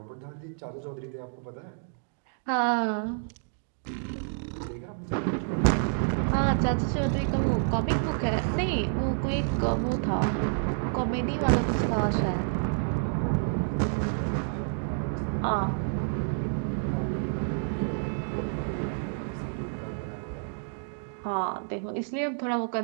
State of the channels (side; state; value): left; silent; digital silence